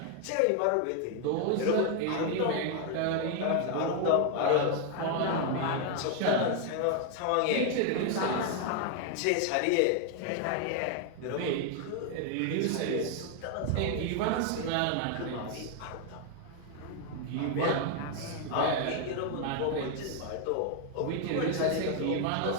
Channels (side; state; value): both; different; correlation 0.00